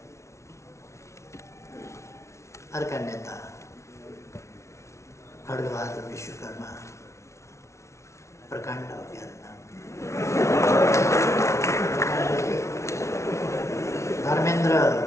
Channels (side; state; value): right; late; 0.13 ms